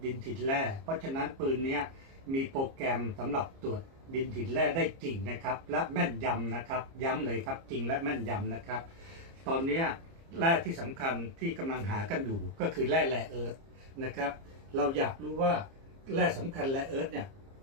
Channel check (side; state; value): left; late; 30 ms